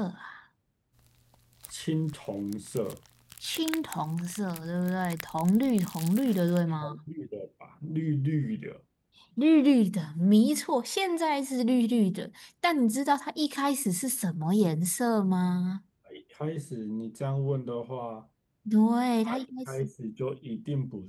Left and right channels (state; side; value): identical; both; correlation 1.00